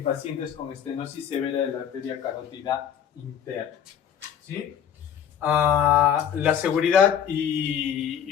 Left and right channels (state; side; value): quieter; right; 8.9 dB